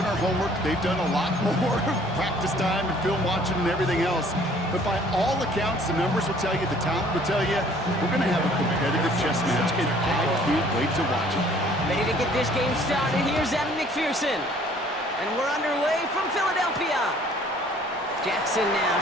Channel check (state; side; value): normal; both; correlation 0.56